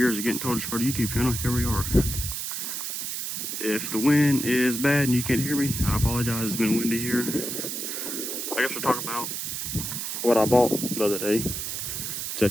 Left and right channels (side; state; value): right; noise; hiss, 4 dB below the sound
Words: of getting told to start a YouTube channel, here we are. If the wind is bad and you can't hear me, I apologize. It's been windy here. I guess we'll talk about what I bought the other day. It's a